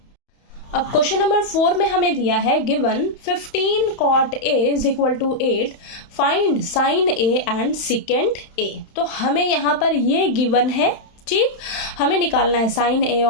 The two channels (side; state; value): right; late; 31 ms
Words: अब क्वेश्चन नंबर 4 में हमें दिया है given 15 cot a is equal to 8, find sine a and secant a। तो हमें यहाँ पर ये गिवन है। ठीक, हमें निकालना है साइन ए